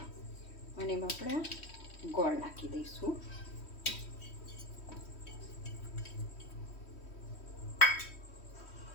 અને એમાં આપણે ગોળ નાખી દઈશું.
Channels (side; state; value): right; late; 3.1 ms